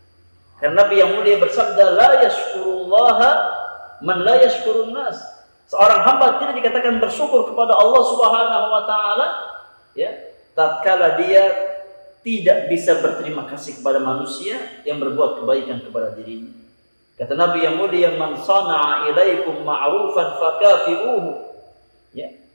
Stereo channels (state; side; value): inverted; both; correlation -1.00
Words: Karena Nabi yang mulia bersabda, la yashkurullaha man la yashkurun nas. Seorang hamba tidak dikatakan bersyukur kepada Allah Subhanahu wa taala, ya, tatkala dia tidak bisa berterima kasih kepada manusia yang berbuat kebaikan kepada dirinya. Kata Nabi yang mulia, man sana'a ilaikum ma'rufan fakafi'uhu. Ya,